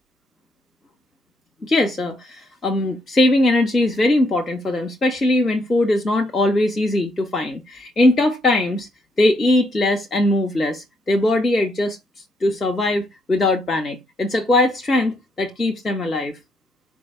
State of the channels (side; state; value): both; normal; correlation 0.74